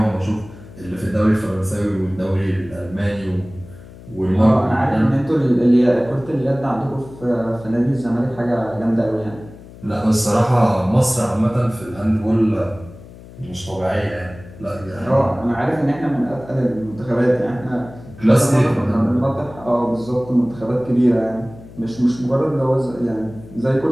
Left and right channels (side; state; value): left; noise; hum, 18 dB below the sound